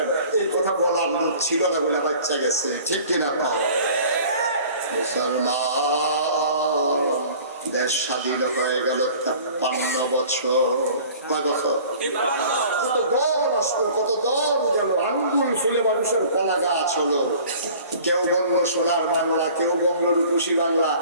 এই কথা বলার লোক ছিল না বলে বাচ্চা গেছে। ঠিক কিনা কও? মুসলমান দেশ স্বাধীন হয়ে গেল 53 বছর। কয় বছর? কত দল আসলো, কত দল গেল, আঙ্গুল ফুলে মানুষের কলা গাছ হলো। কেউ বলল সোনার বাংলা, কেউ বলল রূপসী বাংলা,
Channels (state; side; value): inverted; both; correlation -0.47